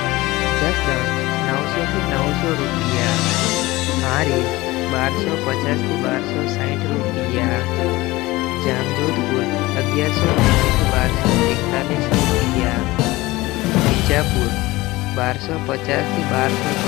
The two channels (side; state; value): right; quieter; 19.9 dB